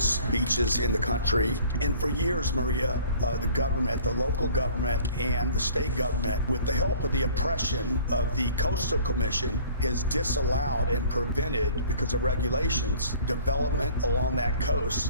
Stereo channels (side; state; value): both; inverted; correlation -0.50